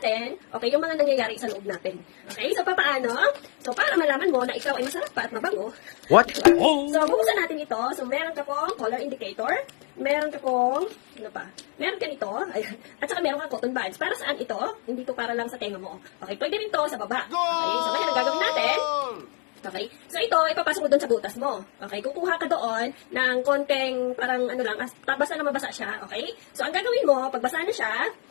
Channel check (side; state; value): right; quieter; 37.5 dB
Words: okay, yung mga nangyayari sa loob natin. Okay, so paano? So, para malaman mo na ikaw ay masarap pa at mabango. What? So, buksan natin ito. So, meron ka pong color indicator. Meron ka pong, ano pa? Meron ka nito. Ayan. At saka meron ka cotton buds. Para saan ito? Hindi to para lang sa tenga mo. Okay, pwede rin to sa baba. Okay, so ngayon ang gagawin natin. Okay? So, ito, ipapasok mo doon sa butas mo. Okay? Kukuha ka doon ng konting, parang ano lang, basta na mabasa siya. Okay? So, ang gagawin mo, pag basa na siya,